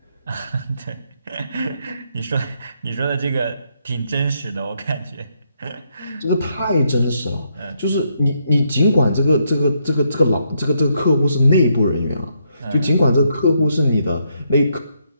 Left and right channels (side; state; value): both; inverted; correlation -0.76